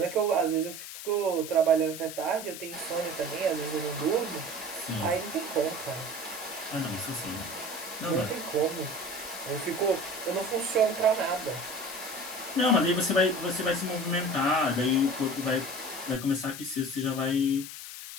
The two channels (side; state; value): left; noise; hiss, 10 dB below the sound